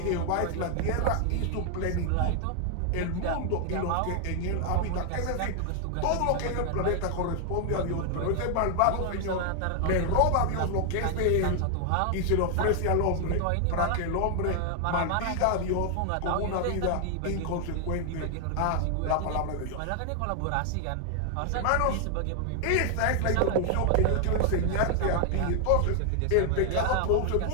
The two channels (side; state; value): both; different; correlation 0.00